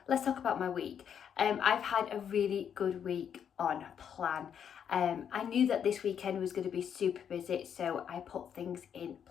let's talk about my week. I've had a really good week on plan. I knew that this weekend was going to be super busy, so I put things in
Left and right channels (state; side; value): quieter; right; 8.3 dB